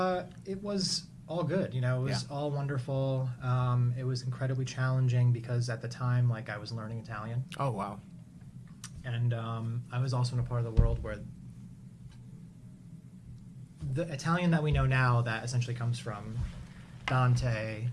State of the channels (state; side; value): identical; both; correlation 1.00